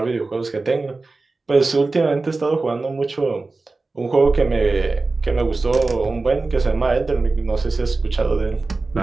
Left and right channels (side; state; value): left; quieter; 3.6 dB